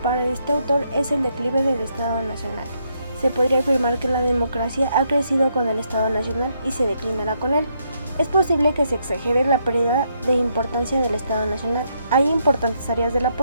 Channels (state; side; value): inverted; both; correlation -0.76